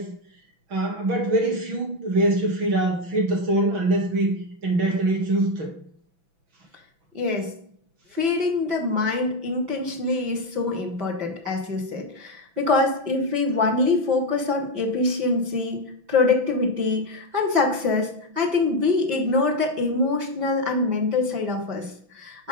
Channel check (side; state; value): left; late; 6.0 ms